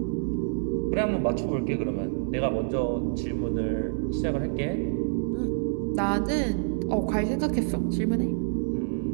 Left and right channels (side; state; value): left; silent; 60 dB below the other